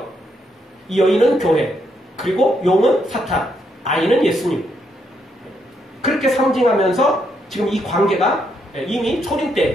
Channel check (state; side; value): normal; both; correlation 0.77